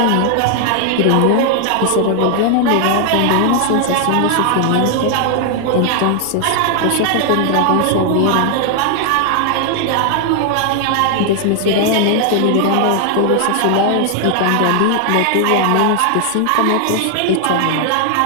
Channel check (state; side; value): different; both; correlation 0.00